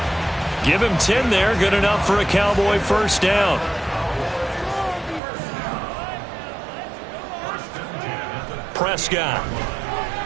Give him 10 there, good enough for a Cowboy first down. Prescott.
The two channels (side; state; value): left; drops out; at 5.2 s